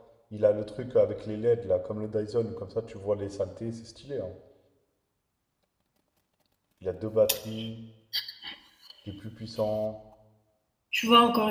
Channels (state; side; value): identical; both; correlation 1.00